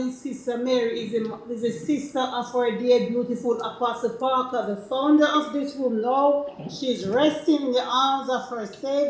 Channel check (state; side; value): identical; both; correlation 1.00